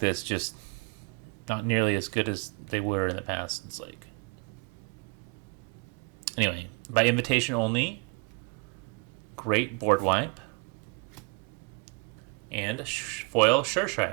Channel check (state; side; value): quieter; left; 30.4 dB